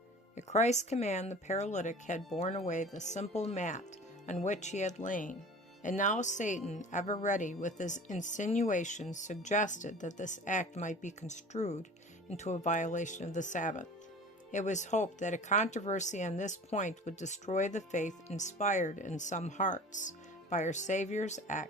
At Christ's command, the paralytic had borne away the simple mat on which he had lain, and now Satan, ever ready with his insinuations, suggested that this act might be construed into a violation of the Sabbath. It was hoped that a controversy on this point would destroy the faith inspired in some hearts by our Savior's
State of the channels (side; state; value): both; normal; correlation 0.41